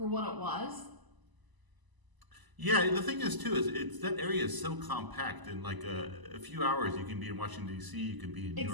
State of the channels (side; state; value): left; late; 1.0 ms